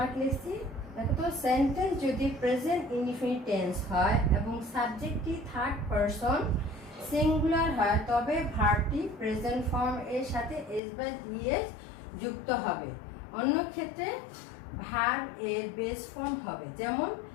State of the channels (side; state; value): right; drops out; at 10.8 s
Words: লিখছি, দেখো তো, সেন্টেন্স যদি প্রেজেন্ট ইনডিফিনিট টেন্স হয় এবং সাবজেক্টটি থার্ড পারসন সিঙ্গুলার হয় তবে ভার্বটি প্রেজেন্ট ফর্ম এর সাথে এস বা ইএস যুক্ত হবে। অন্য ক্ষেত্রে ভার্ব এর বেস ফর্ম হবে। যেমন